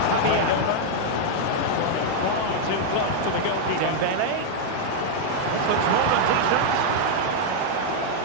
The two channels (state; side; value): different; both; correlation -0.01